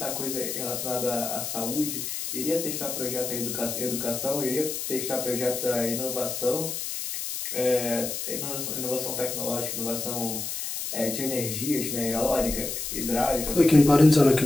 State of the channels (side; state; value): left; noise; hiss, 5 dB below the sound